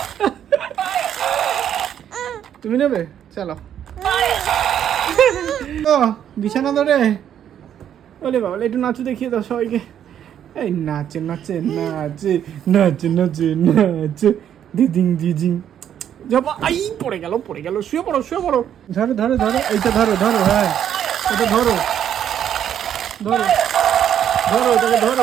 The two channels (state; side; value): quieter; left; 9.7 dB